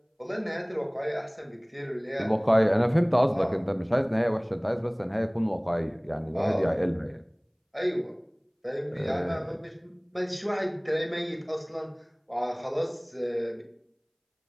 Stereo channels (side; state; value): both; identical; correlation 1.00